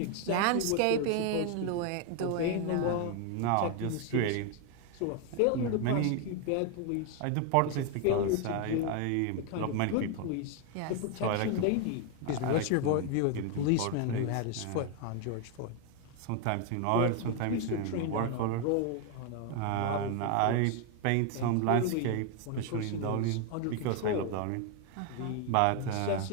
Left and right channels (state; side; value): different; both; correlation 0.01